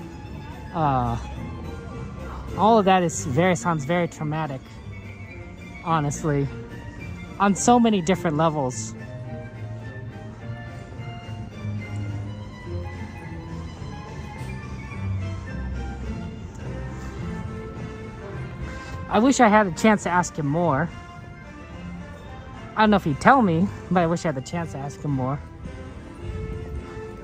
All of that sounds very traumatic, honestly, on so many different levels. I wish I had a chance to ask him more. I don't know if he'd tell me, but I wish I had the chance to ask him more.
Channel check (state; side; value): identical; both; correlation 1.00